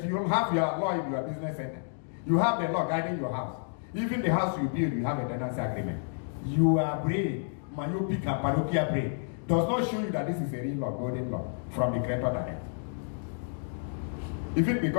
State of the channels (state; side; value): silent; right; digital silence